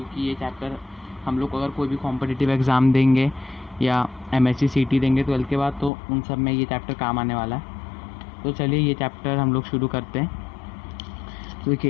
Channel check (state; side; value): drops out; right; at 5.9 s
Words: ये चैप्टर हम लोग अगर कोई भी कॉम्पिटिटिव एग्ज़ाम देंगे या MSc CT देंगे 12th के बाद, तो उन सब में ये चैप्टर काम आने वाला है। तो चलिए ये चैप्टर हम लोग शुरू करते हैं। तो